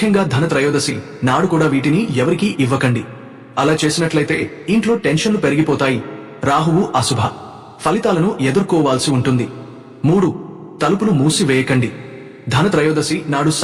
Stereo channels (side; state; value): both; identical; correlation 1.00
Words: ధనత్రయోదశి నాడు కూడా వీటిని ఎవరికీ ఇవ్వకండి. అలా చేసినట్లయితే ఇంట్లో టెన్షన్లు పెరిగిపోతాయి, రాహువు అశుభ ఫలితాలను ఎదుర్కోవాల్సి ఉంటుంది. 3. తలుపులు మూసివేయకండి. ధనత్రయోదశి నాడు